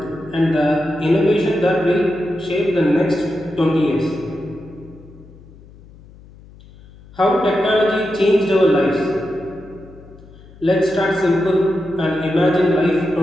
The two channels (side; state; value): left; noise; hum, 22 dB below the sound